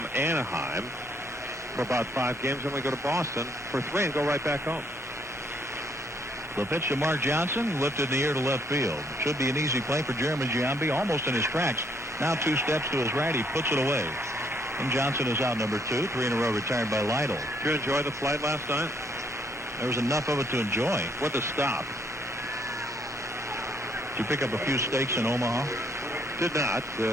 Anaheim for about 5 games, and we go to Boston for 3 and go right back home. The pitch to Mark Johnson, lifted in the air to left field. Should be an easy play for Jeremy Giambi, almost in his tracks. Now 2 steps to his right, he puts it away. And Johnson is out number 2, 3 in a row retired by Lytle. Did you enjoy the flight last night? There was enough of it to enjoy. What a stop. Did you pick up a few steaks in Omaha? Did not.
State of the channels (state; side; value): normal; both; correlation 0.69